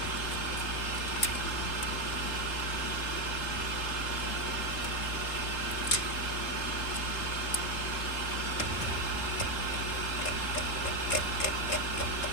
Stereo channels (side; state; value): right; late; 3.8 ms